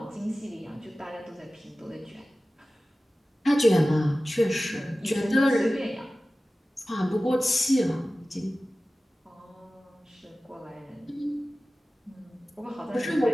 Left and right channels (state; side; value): normal; both; correlation 0.96